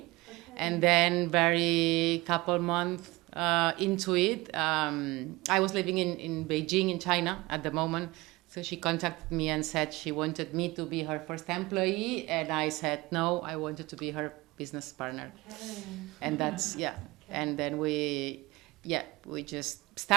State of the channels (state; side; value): quieter; left; 21.5 dB